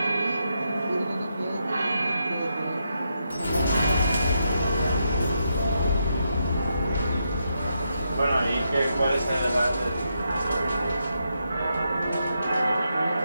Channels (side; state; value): both; inverted; correlation -0.82